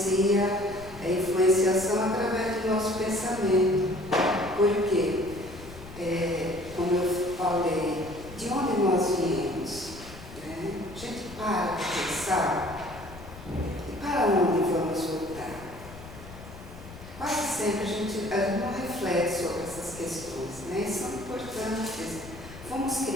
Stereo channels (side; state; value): left; noise; rumble, 16 dB below the sound